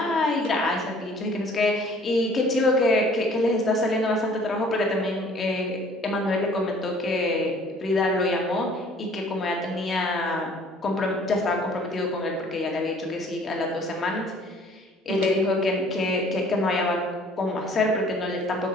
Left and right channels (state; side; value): normal; both; correlation 0.54